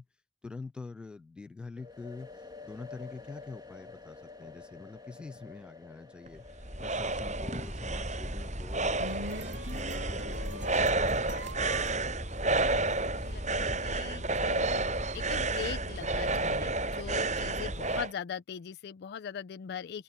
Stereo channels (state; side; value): normal; both; correlation 0.06